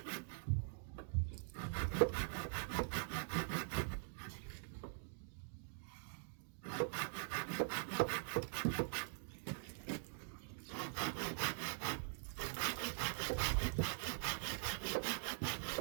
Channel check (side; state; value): left; silent; digital silence